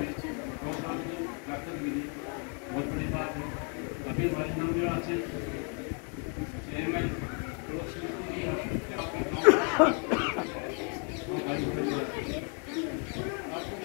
प्रोग्राम की ताकत मिली, बहुत बड़ी बात है। अभी हमारे नवनिर्वाण से चेयरमैन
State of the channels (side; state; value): right; quieter; 37.0 dB